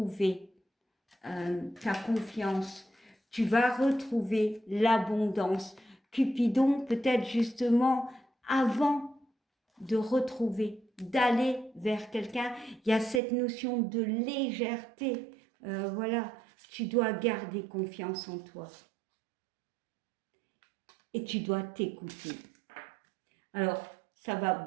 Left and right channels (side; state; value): left; drops out; at 13.2 s